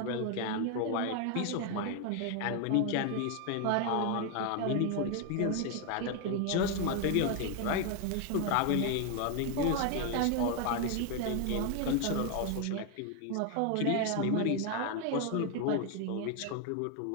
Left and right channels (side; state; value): both; different; correlation 0.01